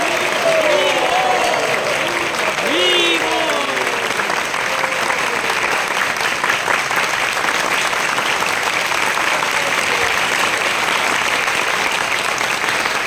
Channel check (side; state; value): both; identical; correlation 1.00